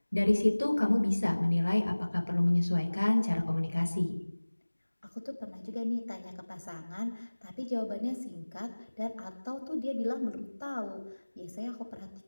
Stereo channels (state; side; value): inverted; both; correlation -1.00